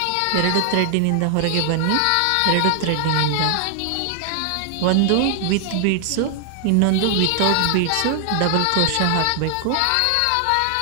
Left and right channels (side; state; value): both; different; correlation 0.00